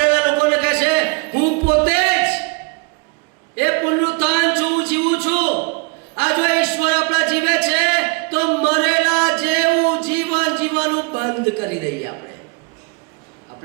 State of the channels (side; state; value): left; quieter; 30.2 dB